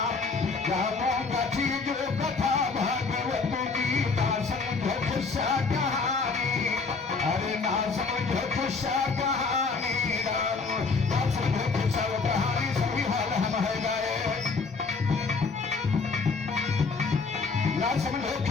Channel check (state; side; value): quieter; right; 4.4 dB